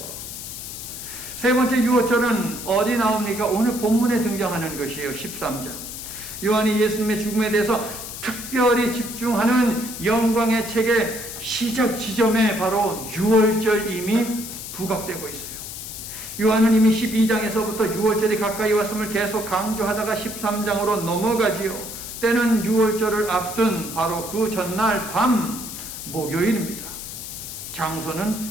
세 번째 유월절은 어디 나옵니까? 오늘 본문에 등장하는 것이에요. 13장. 요한이 예수님의 죽음에 대해서 특별히 집중하는 영광의 책의 시작 지점에 바로 유월절 이미 부각되고 있어요. 요한은 이미 12장에서부터 유월절이 가까이 왔음을 계속 강조하다가 13장으로 넘어가지요. 때는 유월절을 앞둔 바로 그 전날 밤 목요일입니다.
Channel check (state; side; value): noise; left; hiss, 9 dB below the sound